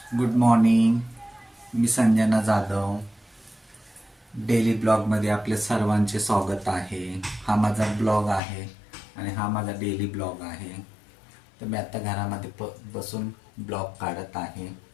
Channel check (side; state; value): right; drops out; at 8.4 s